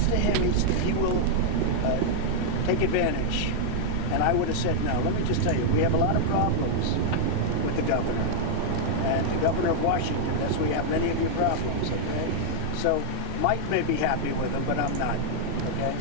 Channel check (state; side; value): different; both; correlation -0.01